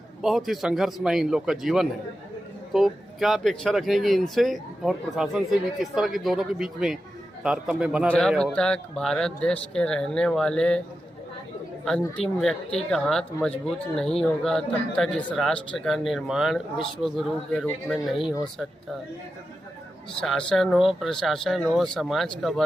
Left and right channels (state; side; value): normal; both; correlation 0.91